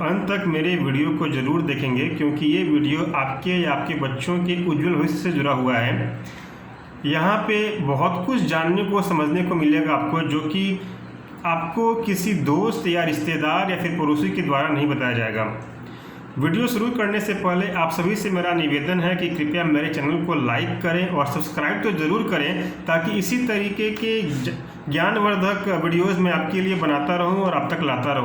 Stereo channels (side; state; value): both; identical; correlation 1.00